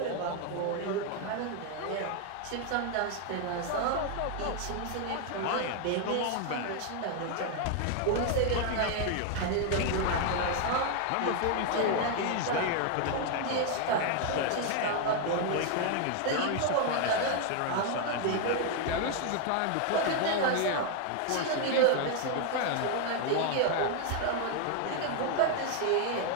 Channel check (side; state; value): both; different; correlation 0.00